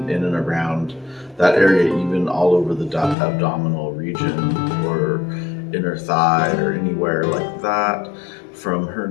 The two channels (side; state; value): right; drops out; at 3.2 s